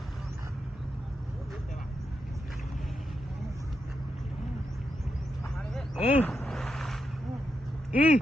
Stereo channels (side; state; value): both; normal; correlation 0.84